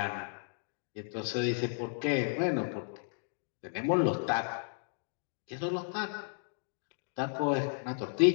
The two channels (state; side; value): silent; right; digital silence